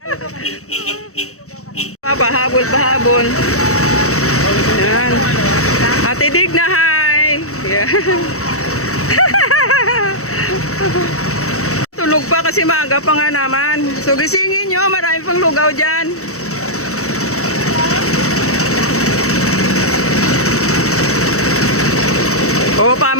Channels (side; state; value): right; late; 0.64 ms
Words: Pahabol. Yan. Ate Digna, hi. Yan. Tulog pa kasi maaga pa nga naman. So gisingin nyo, marami pang lugaw dyan. O,